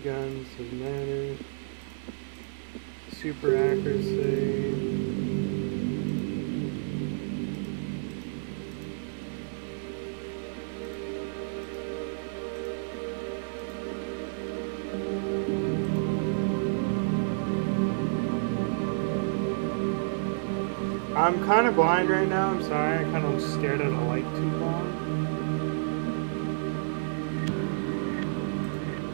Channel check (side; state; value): left; silent; digital silence